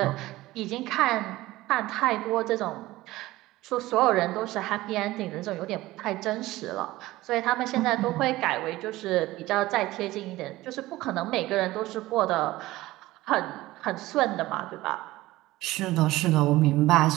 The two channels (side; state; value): left; quieter; 17.7 dB